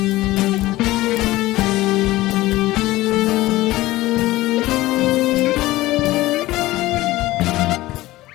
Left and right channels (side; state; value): right; quieter; 17.8 dB